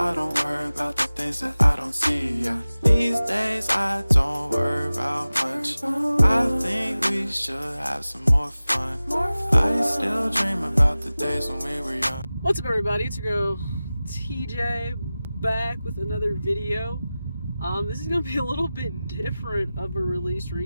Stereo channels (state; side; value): inverted; both; correlation -0.96